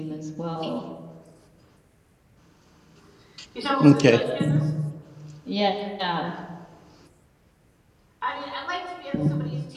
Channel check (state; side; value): identical; both; correlation 1.00